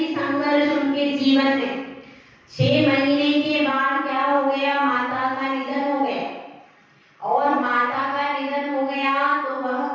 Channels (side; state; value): both; identical; correlation 1.00